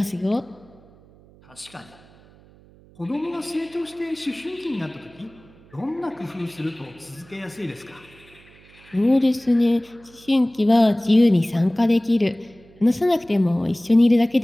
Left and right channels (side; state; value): right; noise; hum, 26 dB below the sound